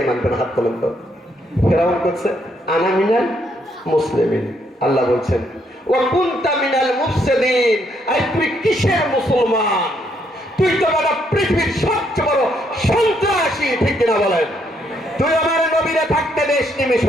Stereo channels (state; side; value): normal; both; correlation 0.73